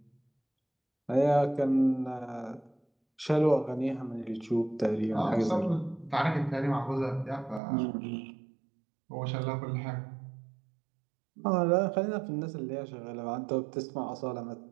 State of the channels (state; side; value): drops out; left; at 7.6 s